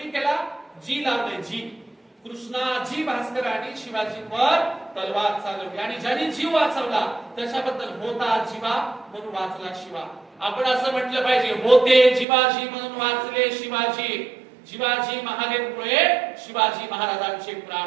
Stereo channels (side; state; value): left; drops out; at 12.2 s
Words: केला? जी लावले, जी. कृष्णाजी भास्करांनी शिवाजींवर तलवार चालवली आणि ज्यांनी जीव वाचवला त्याच्याबद्दल होता जीवा म्हणून वाचला शिवा. आपण असं म्हटलं पाहिजे, होते जिवाजी म्हणून वाचले शिवाजी. शिवाजी महादेवमुळे शिवाजी महाराजांचे